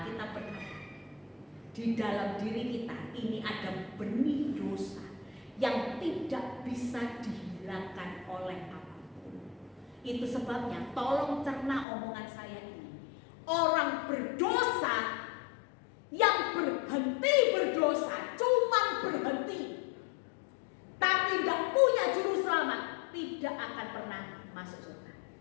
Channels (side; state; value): right; drops out; at 11.9 s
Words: berkata, di dalam diri kita ini ada benih dosa yang tidak bisa dihilangkan oleh apapun. Itu sebabnya tolong cerna omongan saya ini. Orang berdosa yang berhenti berdosa, cuman berhenti, tapi tidak punya juru selamat, tidak akan pernah masuk surga.